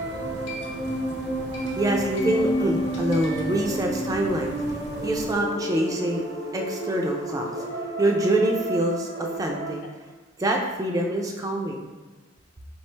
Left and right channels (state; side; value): normal; both; correlation 0.62